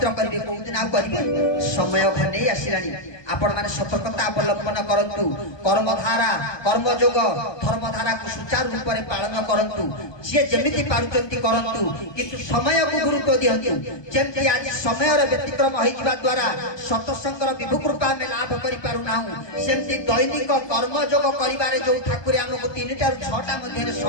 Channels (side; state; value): right; late; 1.2 ms